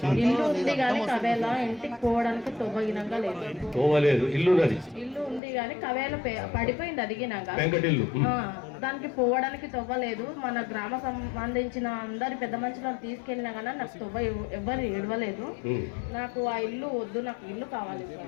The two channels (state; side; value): drops out; right; at 5.4 s